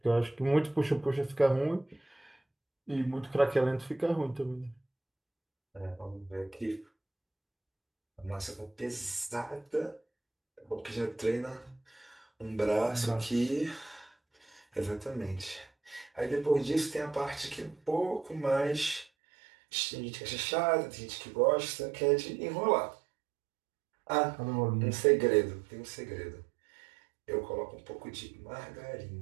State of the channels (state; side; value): drops out; left; at 19.1 s